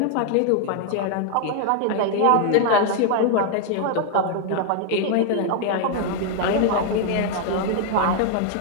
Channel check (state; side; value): different; both; correlation 0.00